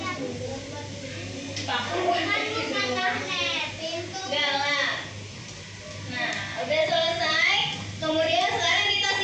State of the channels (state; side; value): identical; both; correlation 1.00